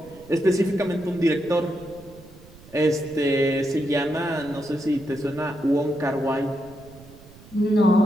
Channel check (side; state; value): right; noise; rumble, 21 dB below the sound